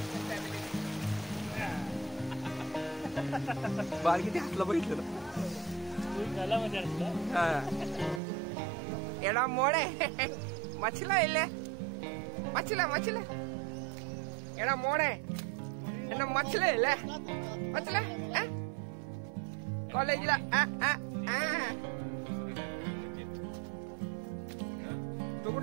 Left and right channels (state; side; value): drops out; left; at 8.2 s